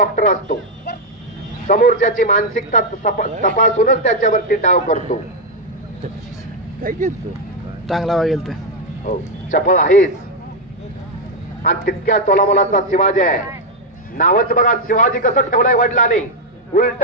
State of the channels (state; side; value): normal; both; correlation 0.02